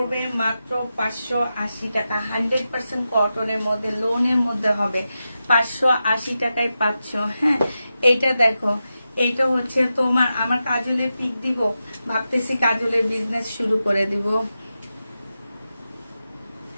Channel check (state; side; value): inverted; both; correlation -0.91